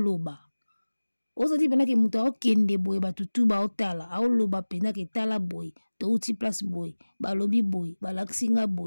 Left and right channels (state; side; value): inverted; both; correlation -1.00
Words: oza ti pena ke muta okende boye batutu baotala aoloba pena ke tala boye to uti place boye balobi boye balaksinga